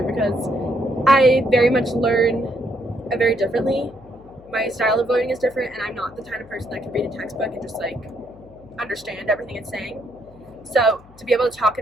because I very much learn very differently. My style of learning is different, and I'm not the kind of person that can read a textbook and just like understand everything it's saying. So to be able to talk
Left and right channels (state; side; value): noise; left; hum, 24 dB below the sound